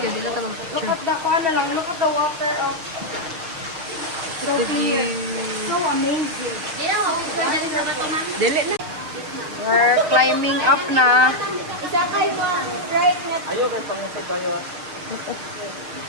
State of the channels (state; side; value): late; left; 6.5 ms